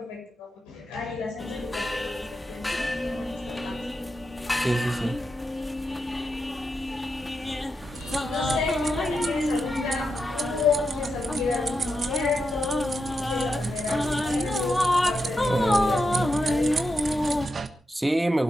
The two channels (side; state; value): both; normal; correlation 0.86